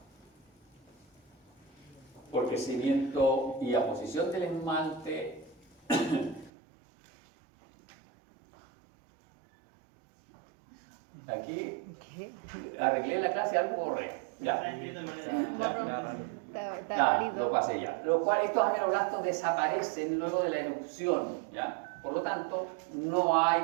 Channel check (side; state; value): left; drops out; at 6.5 s